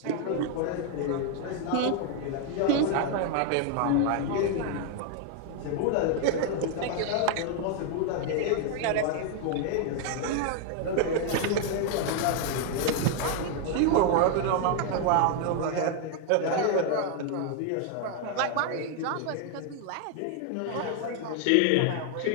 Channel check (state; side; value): different; both; correlation 0.00